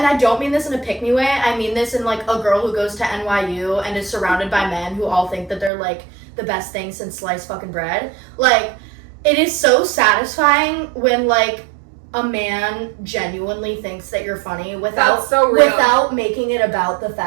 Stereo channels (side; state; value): left; drops out; at 5.7 s